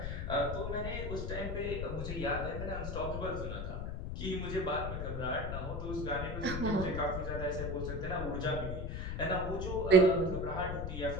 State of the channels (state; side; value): noise; left; rumble, 4 dB below the sound